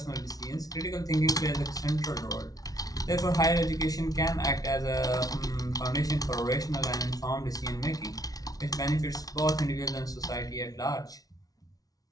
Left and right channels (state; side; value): late; right; 0.18 ms